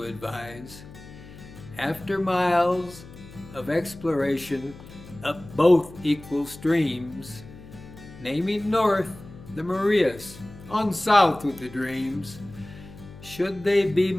advise. After miles of exploration up both equal streams, naming north the Marias, on south with the dreams. Should they be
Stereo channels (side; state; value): left; noise; hum, 18 dB below the sound